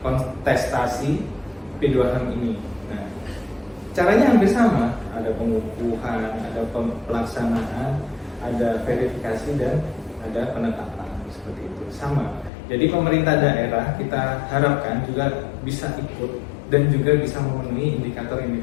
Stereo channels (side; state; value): right; drops out; at 12.5 s